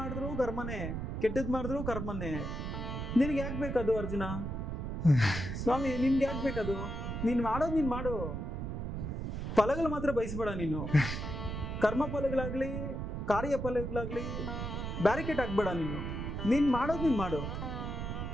ಕರ್ಮನೇ, ಕೆಟ್ಟದ್ ಮಾಡಿದ್ರು ಕರ್ಮನೇ. ನಿನ್ಗೆ ಯಾಕೆ ಬೇಕದು ಅರ್ಜುನ? ಸ್ವಾಮಿ ನಿನ್ಗೆ ಯಾಕೆ ಬೇಕದು? ನೀನ್ ಮಾಡೋದು ನೀನ್ ಮಾಡು, ಫಲಗಳು ಮಾತ್ರ ಬಯಸ್ಬೇಡ ನೀನು. ಕರ್ಮ ಫಲಗಳಾಗ್ಲಿ ಕಾರ್ಯ ಫಲಗಳಾಗ್ಲಿ ಬ್ಯಾರಿಕೇಡ್ ಆಗ್ಬೇಡ ನೀನು. ನೀನ್ ಮಾಡೋದು ನೀನ್ ಮಾಡು.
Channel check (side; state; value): right; noise; rumble, 4 dB below the sound